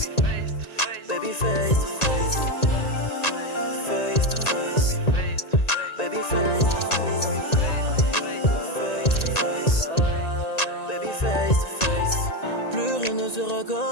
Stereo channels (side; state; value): right; late; 1.9 ms